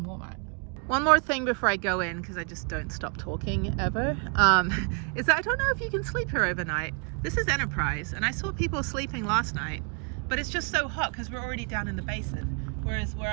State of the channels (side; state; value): left; quieter; 37.7 dB